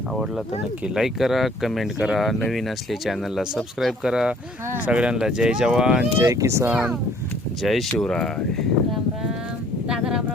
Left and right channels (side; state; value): both; normal; correlation 0.57